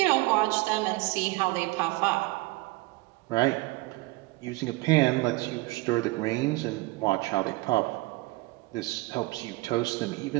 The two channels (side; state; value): left; quieter; 21.9 dB